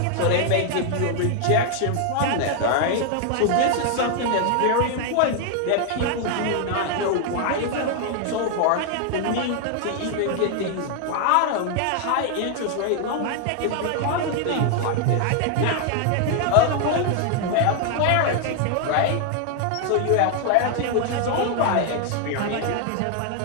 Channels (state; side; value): different; both; correlation 0.00